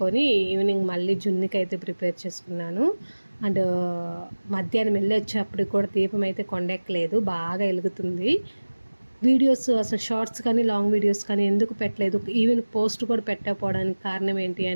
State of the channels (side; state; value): both; inverted; correlation -1.00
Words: ఈవినింగ్ మళ్ళీ జున్నుకి అయితే ప్రిపేర్ చేసుకున్నాను. అండ్ మధ్యాహ్నం వెళ్ళి వచ్చేప్పటికి కూడా దీపం అయితే కొండెక్కలేదు, బాగా వెలుగుతుంది. వీడియోస్ అసలు షార్ట్స్ కానీ లాంగ్ వీడియోస్ కానీ ఎందుకు పెట్టలేదు, ఈవెన్ పోస్ట్ కూడా పెట్టకపోవడానికి కారణం ఏంటి